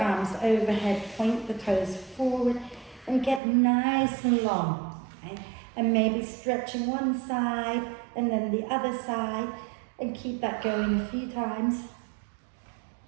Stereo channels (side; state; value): left; drops out; at 3.4 s